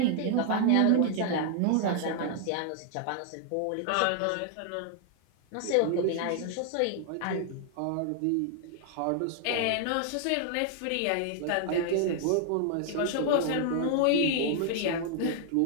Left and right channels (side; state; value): both; different; correlation 0.00